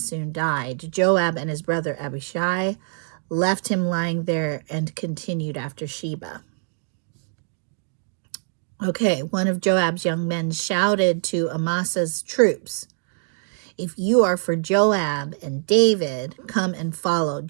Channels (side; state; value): left; silent; digital silence